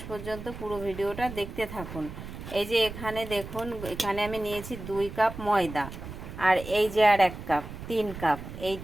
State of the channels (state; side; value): noise; right; rumble, 11 dB below the sound